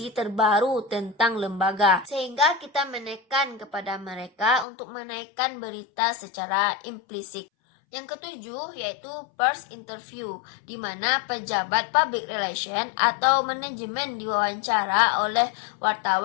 terbaru tentang lembaga, sehingga kita menekan kepada mereka untuk menaikkan berita secara implisit. Yang ketujuh yaitu first interview, di mana pejabat public relation atau manajemen diwawancara oleh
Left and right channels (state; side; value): drops out; right; at 4.7 s